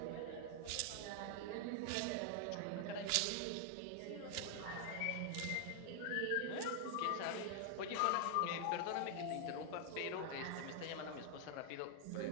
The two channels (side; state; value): both; different; correlation 0.00